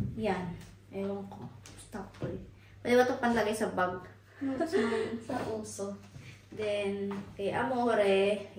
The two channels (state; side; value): identical; both; correlation 1.00